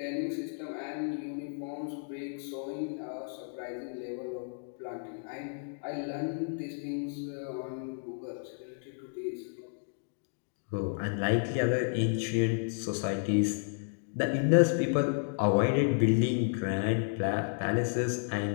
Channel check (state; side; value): silent; right; digital silence